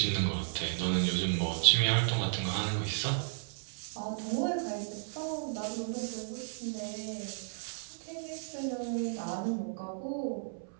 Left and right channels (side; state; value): left; silent; 55 dB below the other